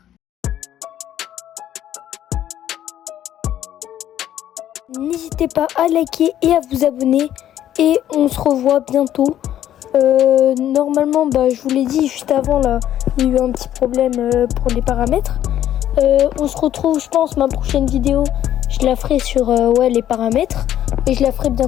N'hésitez pas à liker et à vous abonner et on se revoit bientôt. Normalement, je vous l'ai dit juste avant, là, il y a eu un petit problème pour les paramètres. On se retrouve, je pense, ma prochaine vidéo, je je la ferai sur ouais, les paramètres et je la ferai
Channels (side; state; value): right; quieter; 11.5 dB